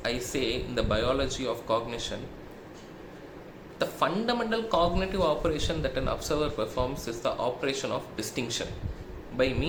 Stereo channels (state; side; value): identical; both; correlation 1.00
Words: I say in the biology of cognition. The fundamental cognitive operation that an observer performs is the operation of distinction. By